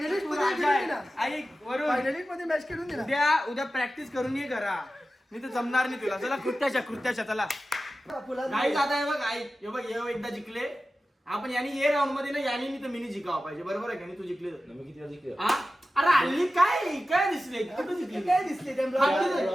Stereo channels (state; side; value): normal; both; correlation 0.94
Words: ऐक वरून फायनलिस्ट मध्ये मॅच खेळून दिला उद्या प्रॅक्टिस करून ये घरा मी तर जमणार नाही तुला चला कृत्याच्या चला नाही जाता हे बघ ऐक हे बघ हे एकदा जिंकले आपण यानी ये राऊंड मध्ये ना यानी मी तर मिनी जिंकावं पाहिजे बरोबर आहे का नाही तू जिंकले मी किती वेळा जिंकलो? अरे हल्ली काय दिसले कुठं जिंकले काय दिसले